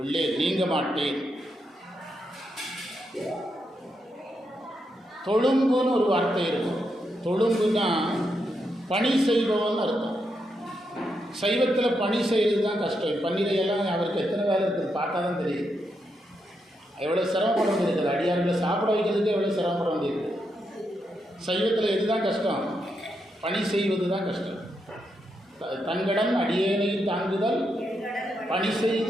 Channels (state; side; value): normal; both; correlation 0.82